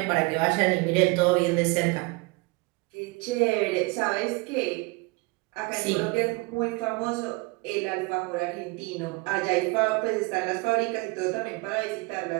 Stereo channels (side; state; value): left; quieter; 25.6 dB